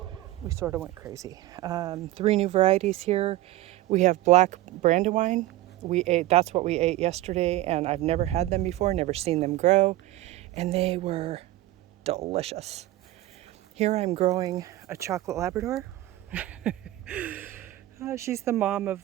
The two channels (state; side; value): quieter; left; 16.2 dB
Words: we sort of went crazy. 3 new varieties here. We have black Brandywine. That's what we ate yesterday, and I've never had them before, never seen them grow, and they were delicious. Here I'm growing a chocolate Labrador. She's the mom